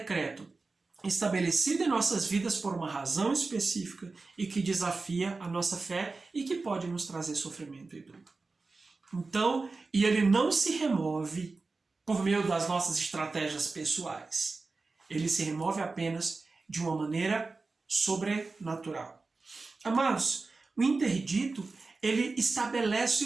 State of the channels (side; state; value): left; quieter; 3.8 dB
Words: estabelecido em nossas vidas por uma razão específica e que desafia a nossa fé e que pode nos trazer sofrimento e dor. Então, e ele não se remove por meio das nossas estratégias pessoais. Ele se remove apenas de uma maneira sobrenatural. Amados, o interdito, ele estabelece